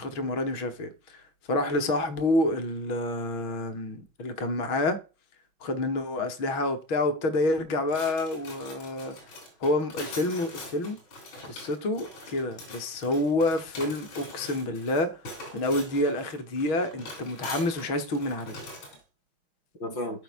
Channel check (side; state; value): right; late; 6.2 ms